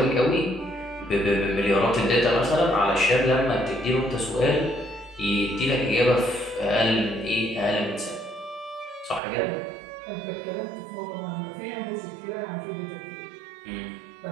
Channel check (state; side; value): drops out; left; at 9.2 s